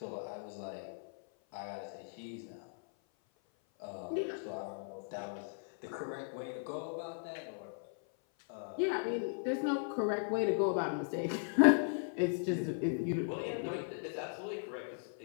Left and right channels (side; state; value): right; silent; 53 dB below the other